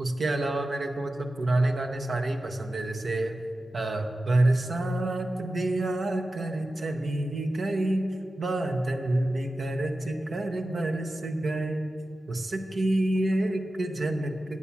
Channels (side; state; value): both; normal; correlation 0.93